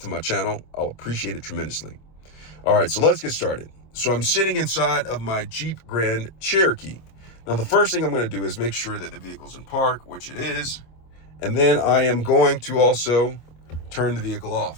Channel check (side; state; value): right; late; 26 ms